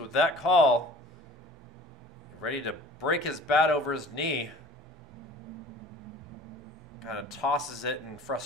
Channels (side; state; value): both; normal; correlation 0.46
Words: with that call. Ready to break his bat over his knee. Kind of tosses it in